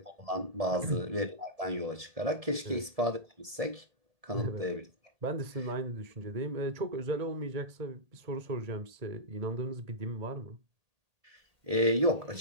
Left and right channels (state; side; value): late; left; 1.7 ms